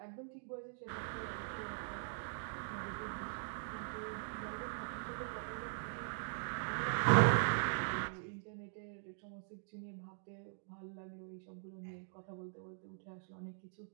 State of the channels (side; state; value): left; silent; digital silence